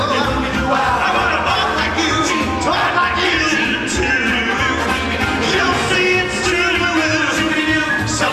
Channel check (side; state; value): both; identical; correlation 1.00